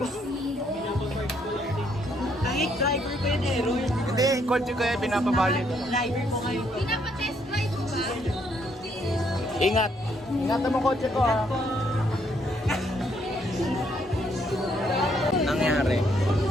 Kahit driver ko yun eh, Roy. Hindi, kotse ko yan, pinapa-valet. Driver ko ngayon. Pinapa-test drive mo ba? Ingat! Ingatan mo kotse ko ha. Nangyari.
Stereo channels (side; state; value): both; normal; correlation 0.71